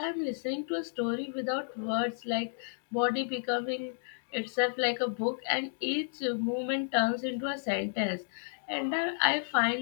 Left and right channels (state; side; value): silent; right; digital silence